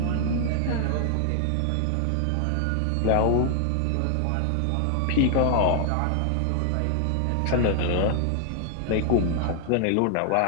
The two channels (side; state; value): both; different; correlation 0.00